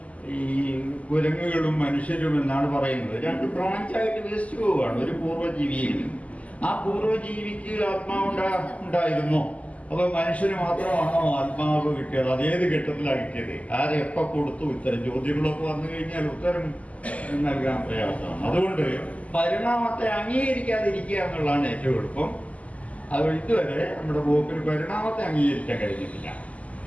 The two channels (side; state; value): right; late; 0.070 ms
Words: ഈ കുരങ്ങുകളും മനുഷ്യരും എന്നാണ് പറയുന്നത്. 2 ബ്രാഞ്ചായിട്ട് വികസിച്ചു പോവുകയാണ് ഒരു പൂർവ്വജീവിയിൽ നിന്ന്. ആ പൂർവ്വജീവിക്ക് ആത്മാവ് ഉണ്ടായിരുന്നോ? അപ്പോൾ മനുഷ്യന് മാത്രമാണോ ആത്മാവ് കിട്ടിയത്? അതേത് ഘട്ടത്തിലാണ് കിട്ടിയത്? ആരെ എപ്പോൾ കൊടുത്തു? ഇത്തരം ചോദ്യങ്ങളൊക്കെ വന്നു കഴിഞ്ഞാൽ ഉത്തരം നൽകാൻ പ്രയാസമാണ്. അതുകൊണ്ട് പരിണാമത്തെ അംഗീകരിക്കാതിരിക്കുക എന്നുള്ളതാണ് ഏറ്റവും എളുപ്പം. അത് ഇതുവരെ നമ്മുടെ പോപ്പിന് പരിണാമത്തെ അംഗീകരിക്കാൻ കഴിഞ്ഞിട്ടില്ല.